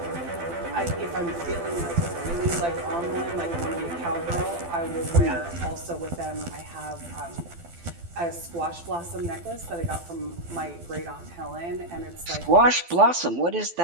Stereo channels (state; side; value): late; left; 12 ms